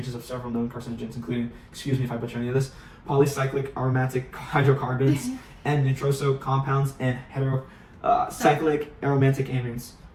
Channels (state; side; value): identical; both; correlation 1.00